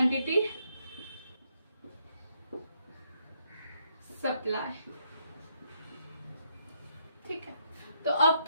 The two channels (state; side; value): inverted; both; correlation -0.75